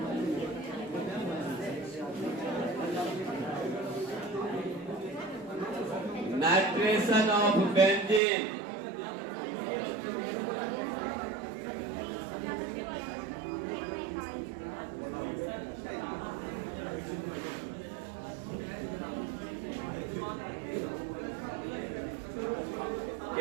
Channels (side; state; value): left; drops out; at 8.2 s